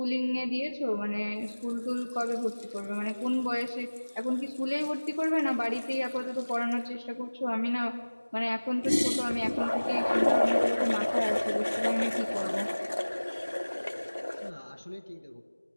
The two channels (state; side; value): inverted; both; correlation -1.00